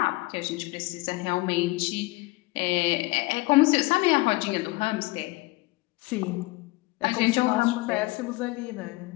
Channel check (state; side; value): quieter; right; 22.1 dB